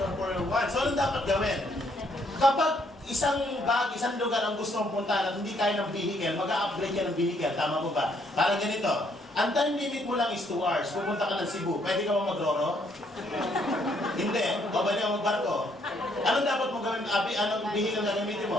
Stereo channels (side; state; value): both; normal; correlation 0.69